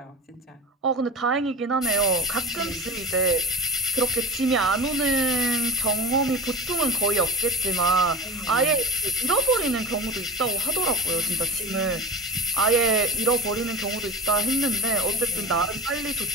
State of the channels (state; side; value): normal; both; correlation 0.32